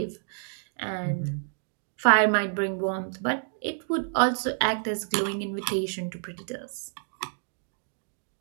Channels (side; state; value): left; silent; 59 dB below the other